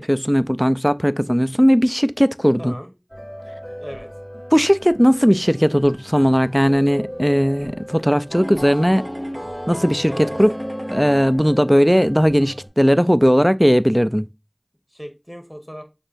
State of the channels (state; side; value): identical; both; correlation 1.00